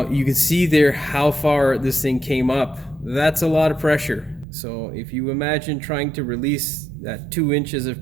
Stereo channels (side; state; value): left; drops out; at 4.5 s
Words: you can see there how far this thing came up. That's a lot of pressure. So if you imagine trying to release that 2 inches